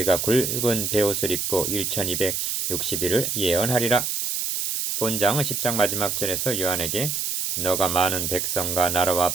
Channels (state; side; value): noise; right; hiss, 1 dB below the sound